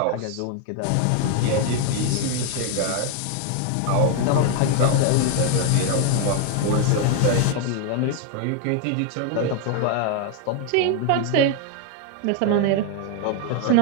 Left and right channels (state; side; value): different; both; correlation 0.01